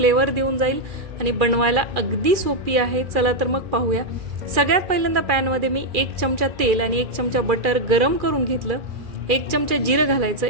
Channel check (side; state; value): left; late; 2.4 ms